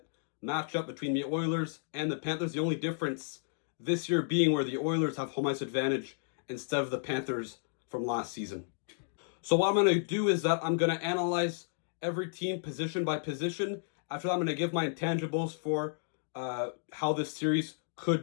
Matchup between the Oilers and the Panthers. The only difference this year being where the Oilers have home ice advantage instead of the Panthers from last season. So what I'm going to do is that I'm going to analyze every team position by position. After that, I'm going to give my intangibles for how this series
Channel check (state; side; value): silent; right; digital silence